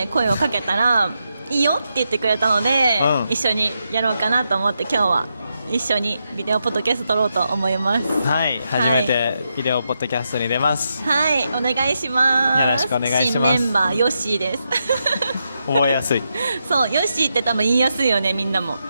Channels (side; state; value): both; inverted; correlation -0.84